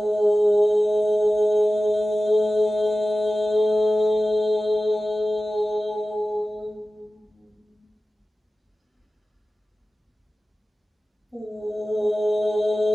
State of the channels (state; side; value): normal; both; correlation 0.96